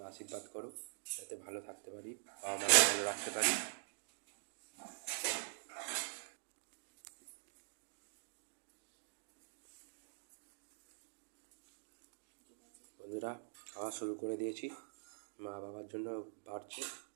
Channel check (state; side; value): silent; left; digital silence